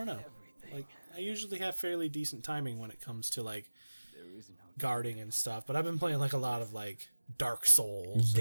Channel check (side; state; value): both; inverted; correlation -1.00